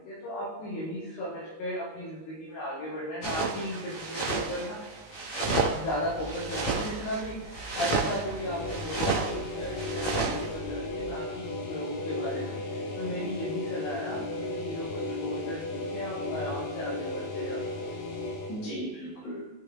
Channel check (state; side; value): late; right; 19 ms